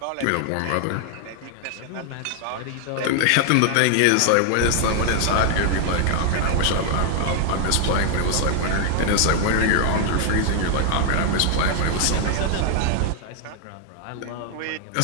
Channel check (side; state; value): both; different; correlation 0.00